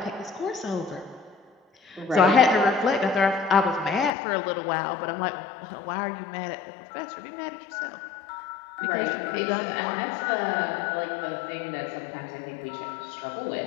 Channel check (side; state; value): right; drops out; at 4.1 s